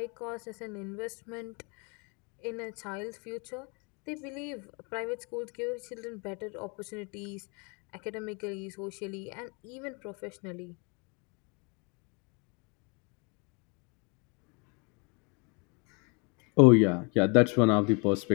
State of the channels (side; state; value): right; quieter; 32.8 dB